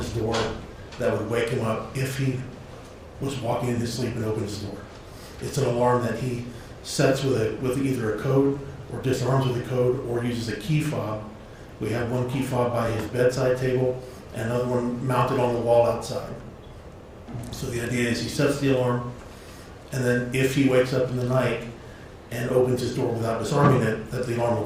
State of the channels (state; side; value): identical; both; correlation 1.00